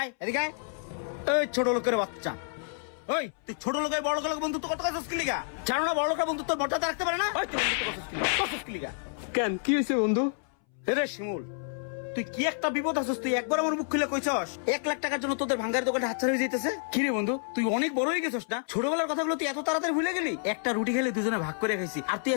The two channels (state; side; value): silent; right; 58 dB below the other